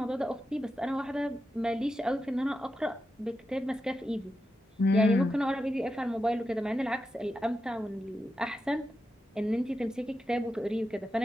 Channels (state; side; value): normal; both; correlation 0.89